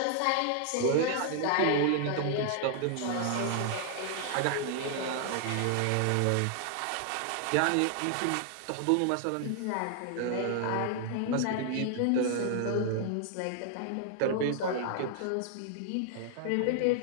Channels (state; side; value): different; both; correlation 0.00